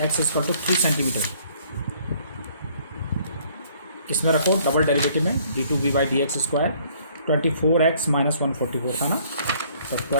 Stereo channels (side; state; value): both; inverted; correlation -0.61